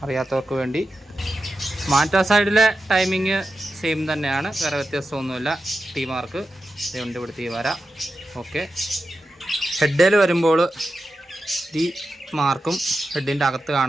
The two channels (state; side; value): normal; both; correlation 0.91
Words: അറിയാത്തവർക്ക് വേണ്ടി. മാറ്റ സൈഡിലെ ടൈമിങ് സെയിം തന്നെയാണ്, വേറെ വ്യത്യാസമൊന്നുമില്ല. ടി മാർക്ക് ഇതുകൊണ്ട് ഇവിടുത്തെ വര. ഓക്കെ, ഹെഡിൽ വരുമ്പോൾ ഈ മാർക്കും ഹെഡിൻ്റെ അകത്ത്